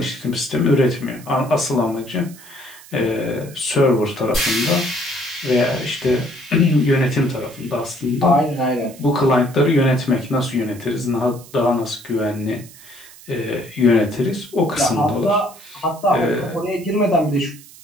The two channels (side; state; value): right; noise; hiss, 20 dB below the sound